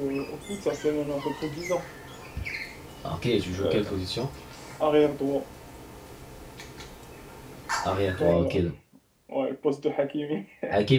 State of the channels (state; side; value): identical; both; correlation 1.00